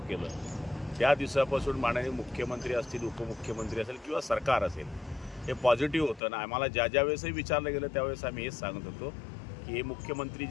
केलं त्या दिवसापासून माननीय मुख्यमंत्री असतील, उपमुख्यमंत्री असेल किंवा सरकार असेल, हे पॉझिटिव्ह होतं ना. आम्हाला ज्या वेळेसही विचारलं गेलं त्यावेळेस आम्ही हेच सांगत होतो की हे मुख्यमंत्री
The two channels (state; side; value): drops out; right; at 6.2 s